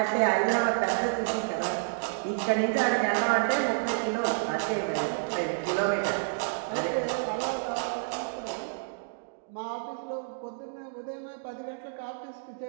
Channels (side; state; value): left; silent; digital silence